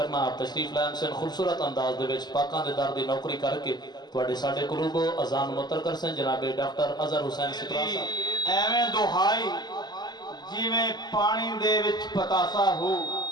आप तशरीफ लाइन से खूबसूरत अंदाज दे विच पाकां दे दर दी नौकरी करके तुहाडे साडे कुलूबो अजान मुतर कर सन जनाबे डॉक्टर अजहर हुसैन सिपरा साहब। एवें दुहाई जिवें पानी दे विच पतासा हो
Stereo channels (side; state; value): right; late; 0.20 ms